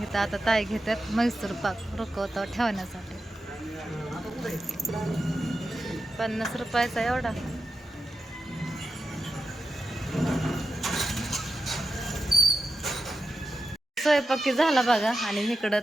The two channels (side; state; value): both; normal; correlation 0.89